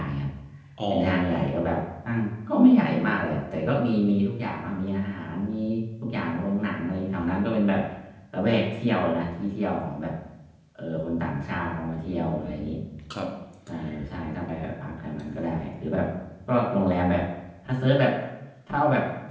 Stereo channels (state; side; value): identical; both; correlation 1.00